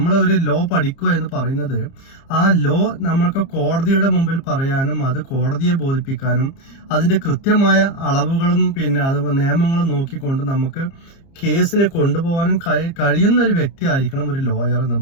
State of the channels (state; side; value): late; right; 30 ms